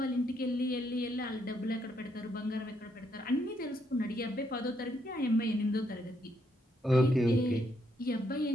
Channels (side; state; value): both; normal; correlation 0.75